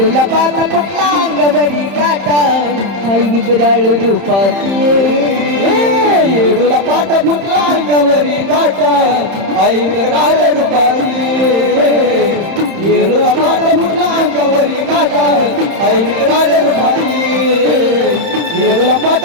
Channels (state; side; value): late; left; 31 ms